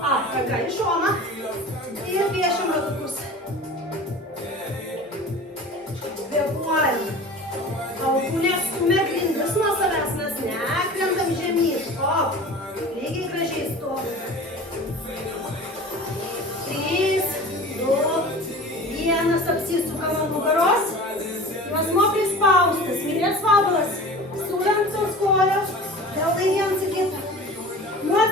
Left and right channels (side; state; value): both; normal; correlation 0.38